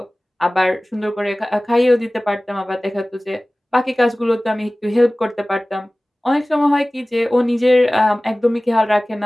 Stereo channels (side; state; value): both; normal; correlation 0.98